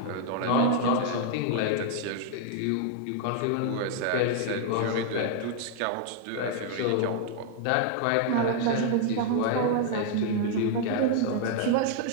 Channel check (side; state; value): both; different; correlation 0.00